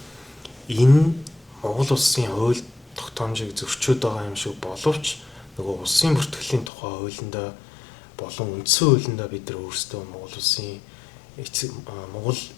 энэ Монгол улсын хууль тогтоомжийг зөрчөөд байгаа юм шиг боловч нөгөө улсын бүртгэлийн тухай хуулиндаа болон үндсэн хуулиндаа бид нар өөрсдөө Монгол улсын Монгол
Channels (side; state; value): right; drops out; at 6.7 s